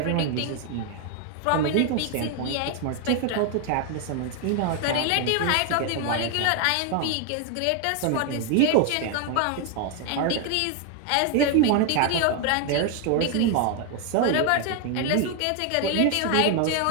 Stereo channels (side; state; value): both; different; correlation 0.01